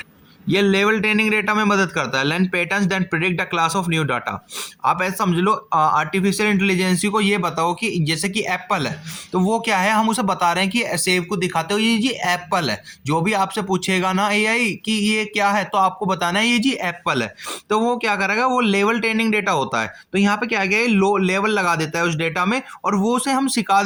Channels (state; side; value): identical; both; correlation 1.00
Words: ये लेवल ट्रेनिंग डेटा में मदद करता है, learn patterns then predict the class of new data. आप ऐसे समझ लो, आर्टिफिशियल इंटेलिजेंसी को ये बताओ कि जैसे कि एप्पल है, तो वो क्या है, हम उसे बता रहे हैं कि सेब को दिखाते हो ये जी एप्पल है। जो भी आपसे पूछेगा ना एआई कि ये क्या है, तो आपको बताना है ये जी एप्पल है। तो वो क्या करेगा, वो लेवल ट्रेनिंग डेटा होता है। तो यहाँ पे क्या गया, लो लेवल लगा देता है उस डेटा में, और वो उसे हम सिखा